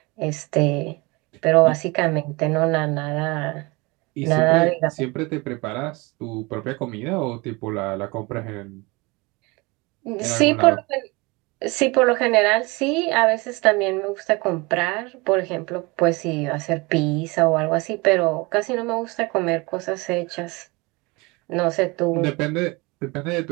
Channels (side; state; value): left; quieter; 25.4 dB